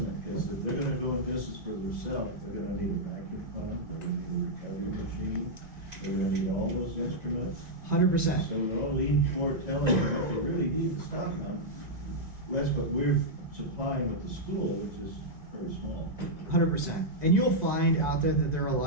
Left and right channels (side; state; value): left; late; 1.9 ms